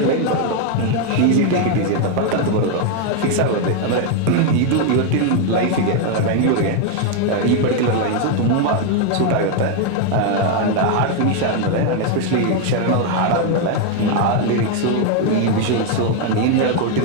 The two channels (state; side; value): different; both; correlation 0.01